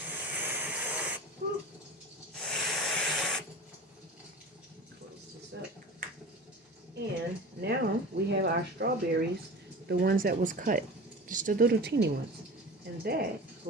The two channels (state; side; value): normal; both; correlation 0.34